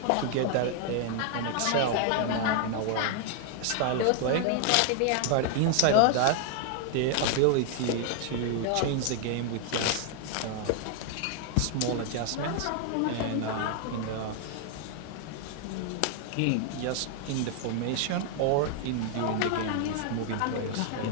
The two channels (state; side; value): different; both; correlation 0.00